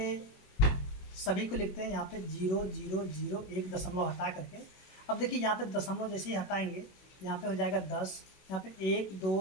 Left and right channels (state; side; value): late; right; 21 ms